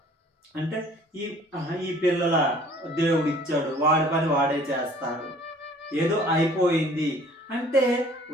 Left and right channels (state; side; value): normal; both; correlation 0.53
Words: అంటే ఈ ఈ పిల్లల దేవుడు ఇచ్చాడు, వాడి పని వాడే చేస్తాడు, ఏదో అయిపోయింది అంటే